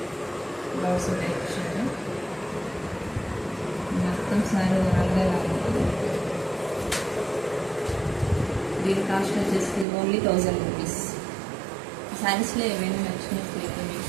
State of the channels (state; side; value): drops out; left; at 9.9 s